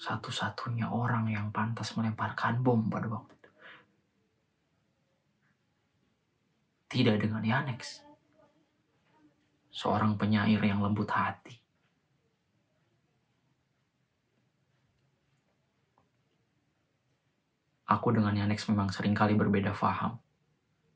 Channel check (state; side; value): identical; both; correlation 1.00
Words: orang yang pantas melemparkan bom pada waktu itu. Tidak dengan Yanex, seorang penyair yang lembut hati. Aku dengan Yanex memang seringkali berbeda faham,